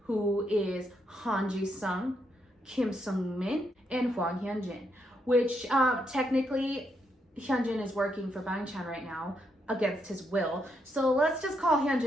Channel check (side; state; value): both; normal; correlation 0.78